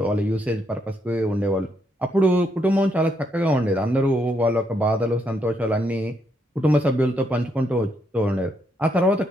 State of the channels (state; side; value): normal; both; correlation 0.76